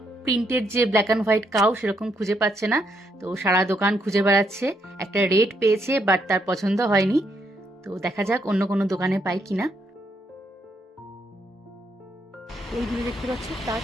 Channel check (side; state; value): both; normal; correlation 0.76